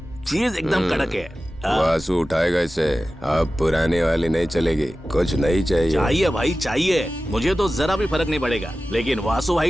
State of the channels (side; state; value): both; normal; correlation 0.95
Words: चीज एकदम कड़क है। वासु उठाएगा इसे। अब पुरानी वाली नहीं चलेगी, कुछ नहीं चाहिए। चाहिए भाई चाहिए, मुझे तो जरा भी फर्क नहीं पड़ेगा, लेकिन वासु